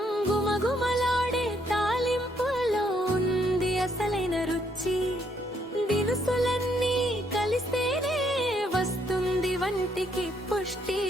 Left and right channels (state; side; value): normal; both; correlation 0.71